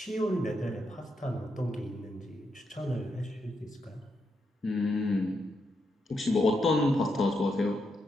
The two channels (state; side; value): normal; both; correlation 0.82